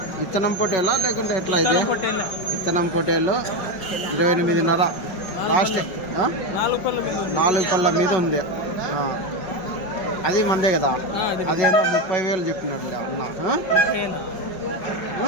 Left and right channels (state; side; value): late; right; 5.3 ms